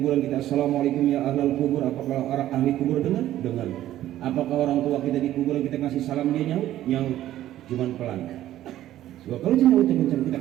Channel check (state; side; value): quieter; left; 13.3 dB